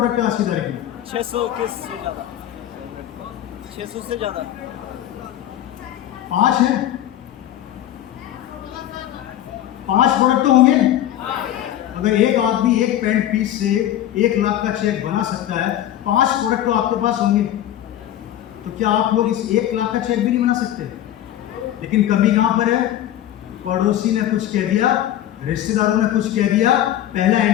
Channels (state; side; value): quieter; right; 12.1 dB